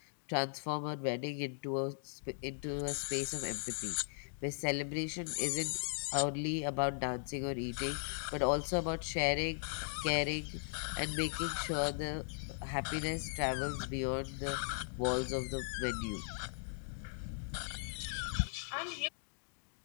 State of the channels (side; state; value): right; silent; digital silence